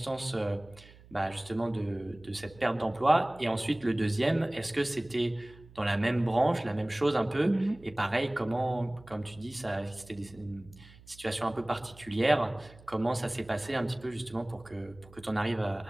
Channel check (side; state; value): right; noise; hum, 22 dB below the sound